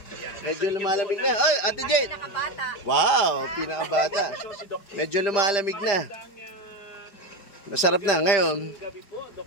Medyo lumalamig na. Ay, Ate Jane! Wow, pinakabata. Medyo lumalamig na. Masarap na. Ngayon,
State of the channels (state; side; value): late; right; 5.0 ms